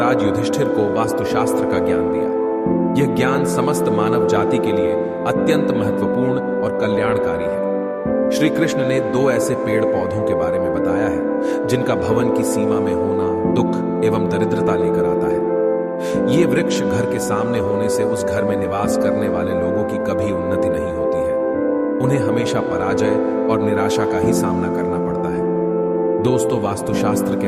युधिष्ठिर को वास्तुशास्त्र का ज्ञान दिया। यह ज्ञान समस्त मानव जाति के लिए अत्यंत महत्वपूर्ण और कल्याणकारी है। श्री कृष्ण ने दो ऐसे पेड़ पौधों के बारे में बताया है जिनका भवन की सीमा में होना दुख एवं दरिद्रता लेकर आता है। ये वृक्ष घर के सामने होने से उस घर में निवास करने वाले लोगों की कभी उन्नति नहीं होती है। उन्हें हमेशा पराजय और निराशा का ही सामना करना पड़ता है। दोस्तों, वास्तुशास्त्र के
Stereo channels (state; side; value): identical; both; correlation 1.00